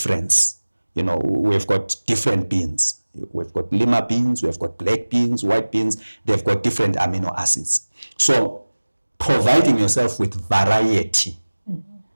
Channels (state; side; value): inverted; both; correlation -1.00